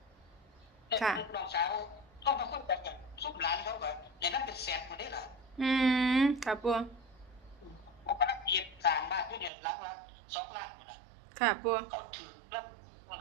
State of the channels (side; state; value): left; drops out; at 9.5 s